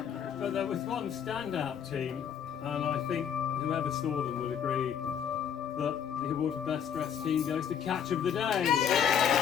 But there was one standout team, and I think whoever saw them would agree that the award for Best Dressed Team goes to Catch of the Day.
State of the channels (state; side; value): quieter; right; 8.3 dB